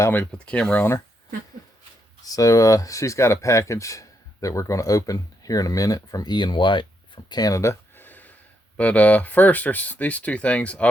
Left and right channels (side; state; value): both; normal; correlation 0.79